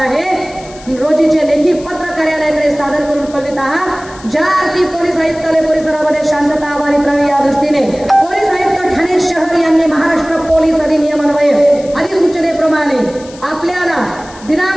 रोजीचे लेखी पत्र कार्यालयाकडे सादर करून कळवित आहात। ज्या अर्थी पोलीस आयुक्तालय परिसरामध्ये शांतता अबाधित राहावी या दृष्टीने पोलीस आयुक्त ठाणे शहर यांनी महाराष्ट्र पोलीस अधिनियम अन्वये अधिसूचनेप्रमाणे आपल्याला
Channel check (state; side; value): noise; left; hiss, 21 dB below the sound